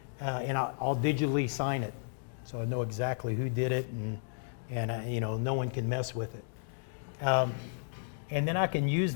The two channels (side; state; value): right; silent; digital silence